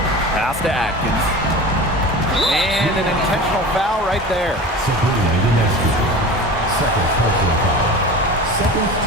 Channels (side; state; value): both; normal; correlation 0.34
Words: Pass to Atkins. And an intentional foul right there. Sabrina Ionescu. Second personal foul. Second